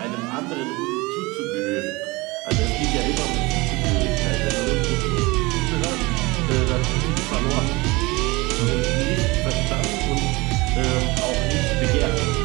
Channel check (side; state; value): left; quieter; 23.4 dB